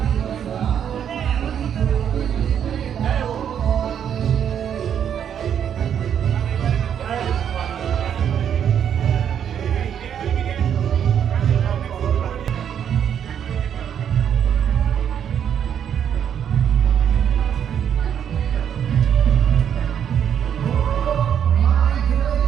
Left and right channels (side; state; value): left; quieter; 8.8 dB